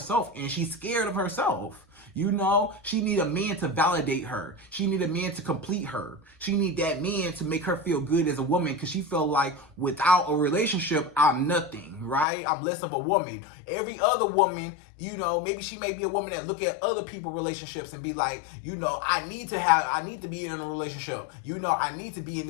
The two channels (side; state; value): right; drops out; at 12.2 s